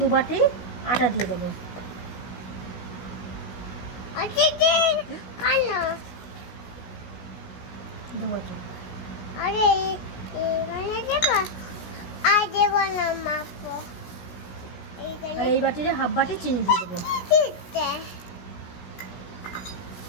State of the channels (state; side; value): late; right; 16 ms